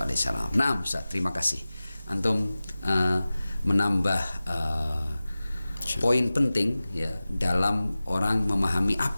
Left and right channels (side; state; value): both; inverted; correlation -0.97